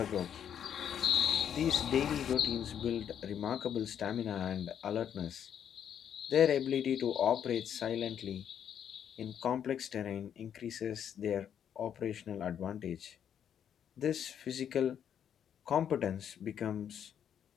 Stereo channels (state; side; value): quieter; right; 8.9 dB